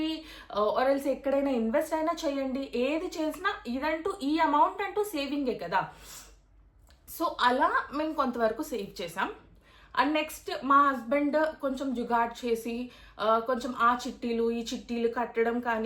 ఆర్ఎల్స్ ఎక్కడైనా ఇన్వెస్ట్ అయినా చేయండి, ఏది చేసినా ఇదంటూ ఈ అమౌంట్ అంటూ సేవింగే కదా. సో అలా మేము కొంతవరకు సేవ్ చేసాం. అండ్ నెక్స్ట్ మా హస్బెండ్ కొంచెం జుగాడ్ చేసి కొంచెం ఆ చిట్టీలు ఈ చిట్టీలు కట్టడం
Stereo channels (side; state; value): both; identical; correlation 1.00